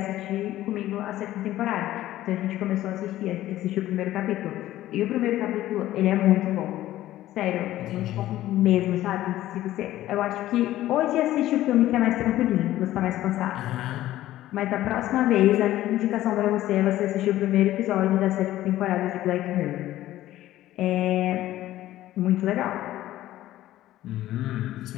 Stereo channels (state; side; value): quieter; right; 14.5 dB